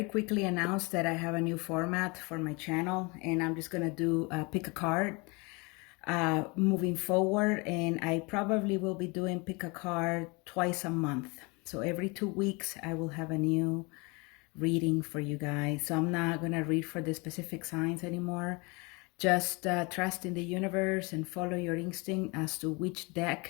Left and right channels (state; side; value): quieter; right; 27.9 dB